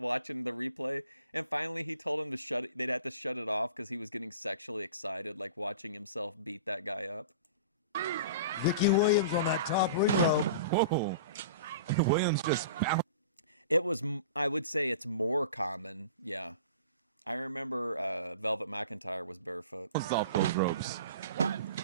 the replay. And finally he told him they'd have to shut it off because he was getting sexually excited, like watching himself beat that guy up. Vicky Williams on that top ring rope. Whoa. Williams just bounced. It was, I would say it's more common. Yeah. I remember Velvet McIntyre was barefoot. Off those ropes.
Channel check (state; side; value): inverted; both; correlation -0.39